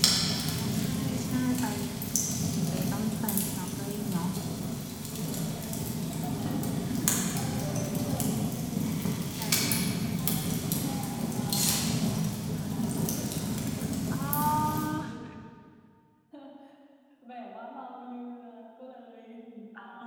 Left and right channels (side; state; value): both; identical; correlation 1.00